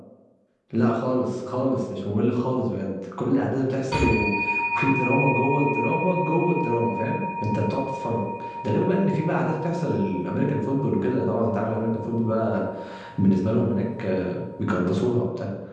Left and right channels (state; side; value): identical; both; correlation 1.00